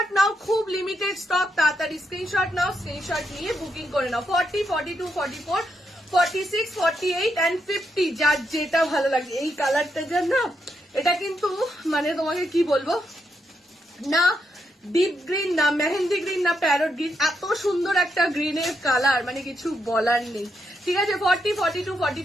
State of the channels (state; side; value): normal; both; correlation 0.81